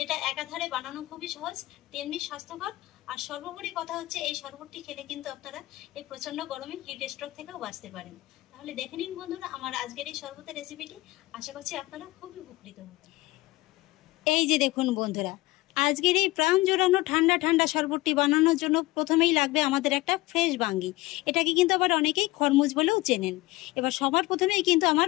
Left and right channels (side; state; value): right; quieter; 19.9 dB